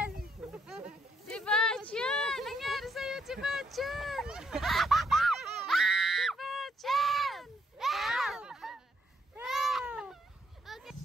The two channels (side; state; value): both; normal; correlation 0.73